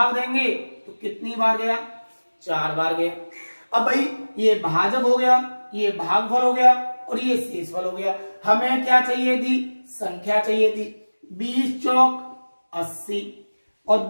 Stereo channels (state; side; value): inverted; both; correlation -1.00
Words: देंगे तो कितनी बार गया? 4 बार गया। अब भाई ये भाजक हो गया, ये भागफल हो गया और ये शेषफल हो गया। हमें क्या चाहिए थी? संख्या चाहिए थी। 20 चौक 80 और